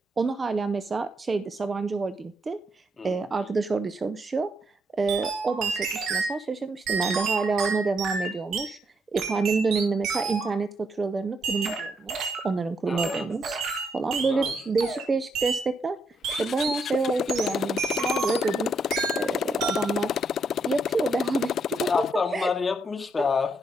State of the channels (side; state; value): both; normal; correlation 0.77